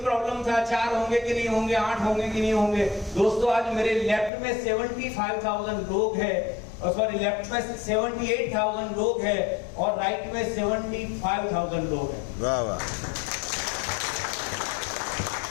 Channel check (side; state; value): right; drops out; at 4.3 s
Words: था। 4 होंगे कि नहीं होंगे, 8 होंगे कि नहीं होंगे। दोस्तों आज मेरे लेफ्ट में 75,000 लोग हैं, और सॉरी लेफ्ट में 78,000 लोग हैं, और राइट में 75,000 लोग हैं। वाह वाह,